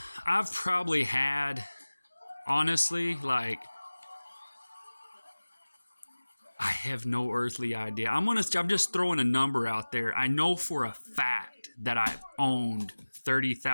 I've probably had, honestly, like, I have no earthly idea. I'm just throwing a number out there. I know for a fact that I've owned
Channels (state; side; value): inverted; both; correlation -1.00